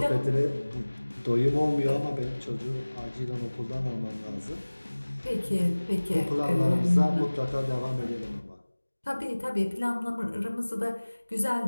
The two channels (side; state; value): both; inverted; correlation -1.00